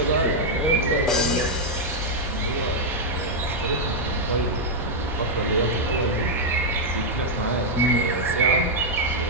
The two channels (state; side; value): normal; both; correlation -0.03